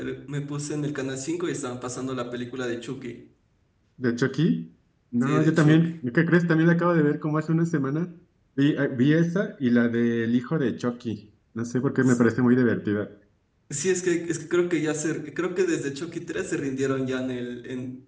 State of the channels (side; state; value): both; identical; correlation 1.00